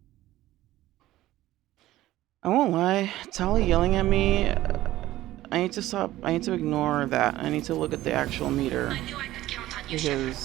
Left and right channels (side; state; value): left; quieter; 15.4 dB